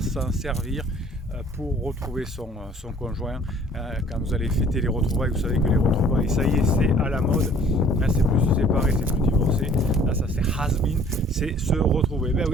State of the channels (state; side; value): normal; both; correlation 0.54